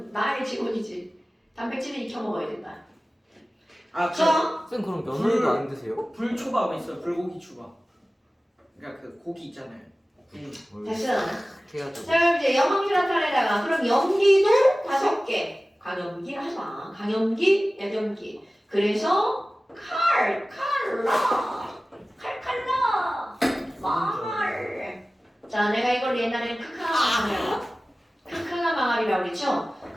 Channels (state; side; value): normal; both; correlation 0.97